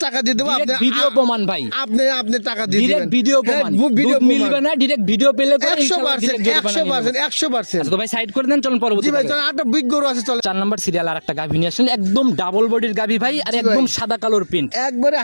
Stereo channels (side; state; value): both; inverted; correlation -1.00